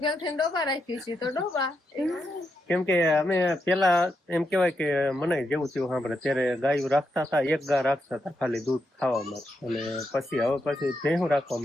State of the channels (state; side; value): normal; both; correlation 0.83